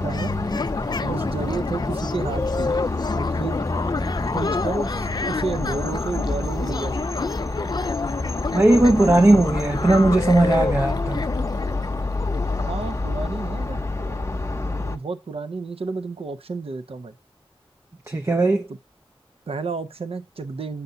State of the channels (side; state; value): both; normal; correlation 0.86